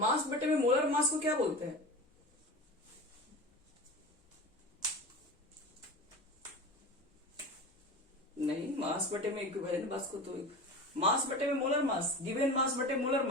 बटे में मोलर मास को क्या बोलते हैं? नहीं, मास बटे में इक्विवेलेंट मास को तो मास बटे में मोलर मास, गिवन मास बटे मोलर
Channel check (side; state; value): both; normal; correlation 0.31